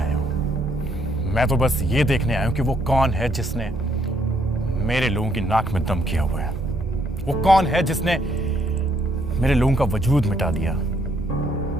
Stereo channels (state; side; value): normal; both; correlation 0.70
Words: हूं। मैं तो बस ये देखने आया हूं कि वो कौन है जिसने मेरे लोगों की नाक में दम किया हुआ है। वो कौन है जिसने मेरे लोगों का वजूद मिटा दिया,